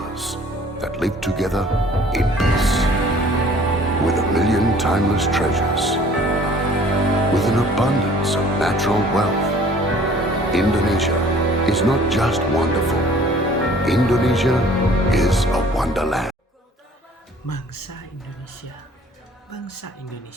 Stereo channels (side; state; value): both; normal; correlation 0.53